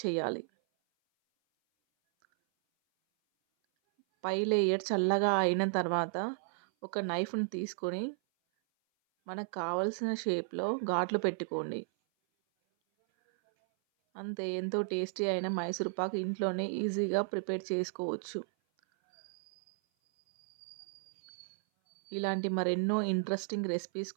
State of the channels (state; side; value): silent; left; 55 dB below the other